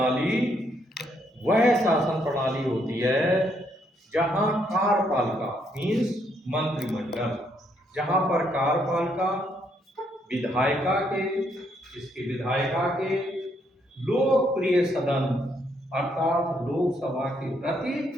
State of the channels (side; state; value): both; normal; correlation 0.73